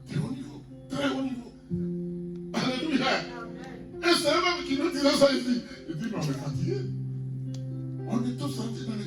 très haut niveau, très haut niveau. Alléluia. Et c'est eux-mêmes qui nous disent ça ici. Ils disent mais on est fatigué. On est tous sortis dans les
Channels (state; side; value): identical; both; correlation 1.00